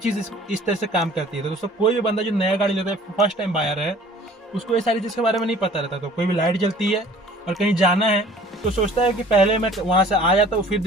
इस तरह से काम करती है। तो दोस्तों कोई भी बंदा जो नया गाड़ी लेता है, फर्स्ट टाइम बायर है, उसको ये सारी चीज़ के बारे में नहीं पता रहता। तो कोई भी लाइट जलती है और कहीं जाना है तो सोचता है कि पहले मैं वहाँ से आ जाता हूँ फिर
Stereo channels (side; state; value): both; normal; correlation 0.51